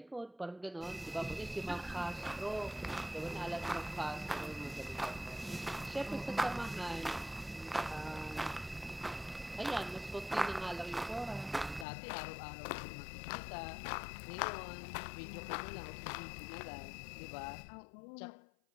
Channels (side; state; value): right; drops out; at 11.9 s